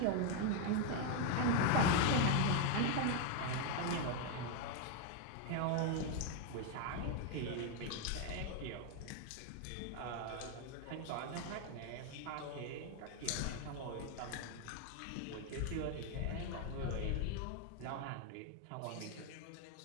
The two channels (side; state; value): both; different; correlation 0.01